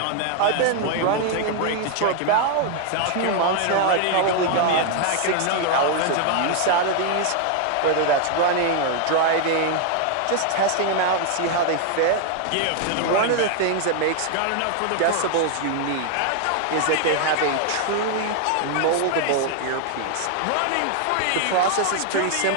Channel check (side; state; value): both; different; correlation 0.00